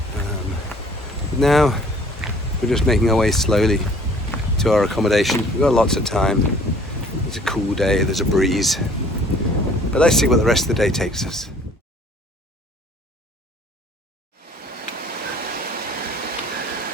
Now we're just making our way slowly to our accommodation. We've got lots of time. It's a cool day, there's a breeze. But let's see what the rest of the day takes us.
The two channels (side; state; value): both; normal; correlation 0.54